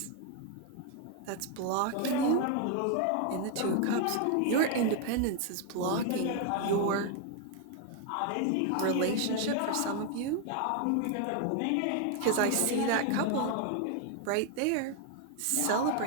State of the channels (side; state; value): both; different; correlation 0.00